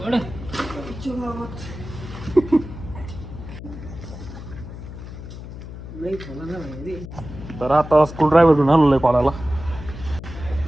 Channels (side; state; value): left; noise; hum, 12 dB below the sound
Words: तर आता स्क्रू ड्रायव्हर घेऊन आलेलो आहे कॉलाला